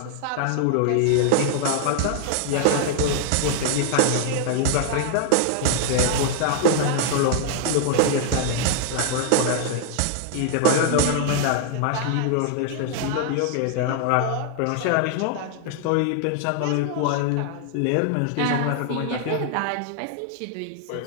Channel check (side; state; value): both; different; correlation 0.00